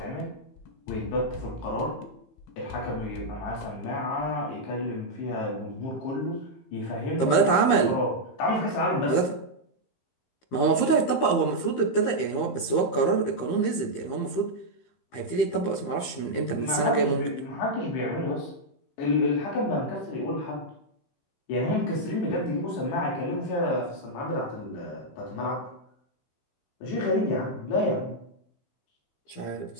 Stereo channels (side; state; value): right; late; 15 ms